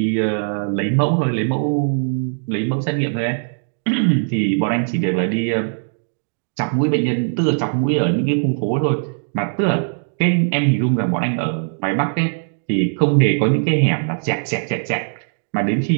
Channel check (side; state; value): left; silent; digital silence